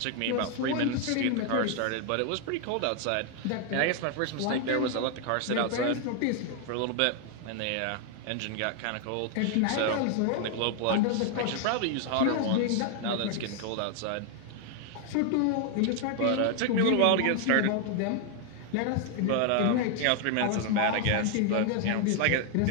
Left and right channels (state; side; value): different; both; correlation 0.00